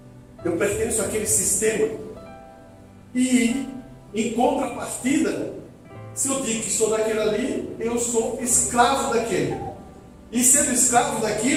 Eu pertenço àquele sistema. E, em contrapartida, se eu digo que sou daquele ali, eu sou escravo daquele. E sendo escravo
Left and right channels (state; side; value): identical; both; correlation 1.00